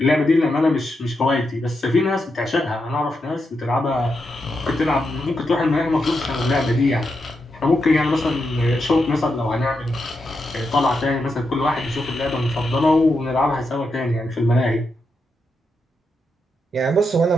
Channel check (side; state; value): both; normal; correlation 0.85